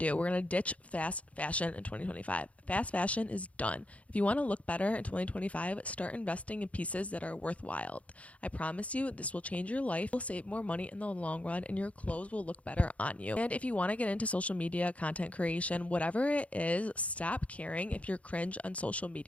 we're going to ditch fast fashion in 2025. Fast fashion is done. If you want to look better in 2025, start investing in pieces that are worthwhile. I promise you, this will change your life. You'll save more money in the long run and your clothes will look better on you. And if you want to get into social media, content creation, whatever it is, stop caring if you're cringe on social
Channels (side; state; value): right; late; 0.065 ms